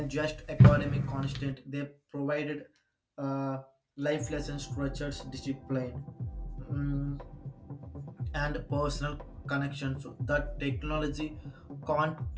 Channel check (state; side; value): identical; both; correlation 1.00